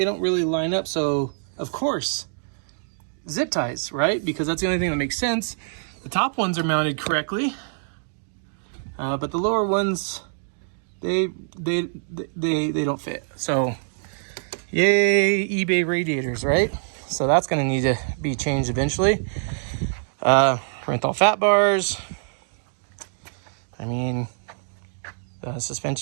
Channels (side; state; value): left; silent; digital silence